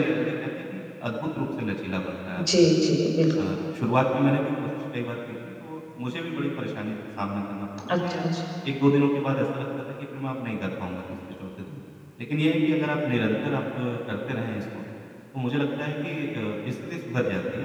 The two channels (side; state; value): both; identical; correlation 1.00